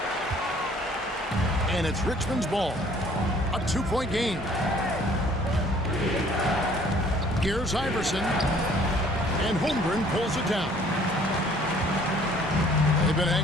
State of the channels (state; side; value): normal; both; correlation 0.57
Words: And it's Richmond's ball. A 2-point game. Here's Iverson. And Holmgren pulls it down. They've been